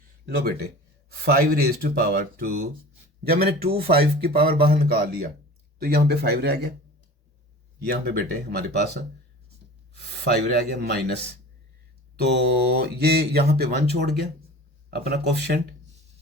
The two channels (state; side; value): normal; both; correlation 0.39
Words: लो बेटे 5 रेज़ टू पावर 2, जब मैंने 5 की पावर बाहर निकाल लिया तो यहाँ पे 5 रह गया, यहाँ पे बेटे हमारे पास 5 रह गया माइनस, तो ये यहाँ पे 1 छोड़ गया अपना कोफिशिएंट।